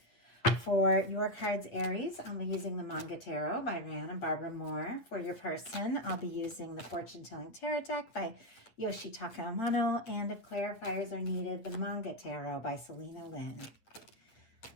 For your cards, Aries, I'll be using the Manga Tarot by Rand and Barbara Moore. For your person, I'll be using the Fortune Telling Tarot deck by Yoshitaka Amano. And if clarifiers are needed, the Manga Tarot by Selena Lynn.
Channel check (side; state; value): right; late; 8.8 ms